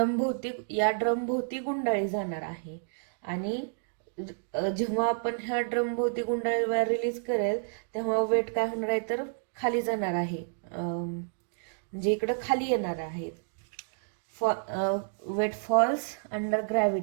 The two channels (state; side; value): silent; left; digital silence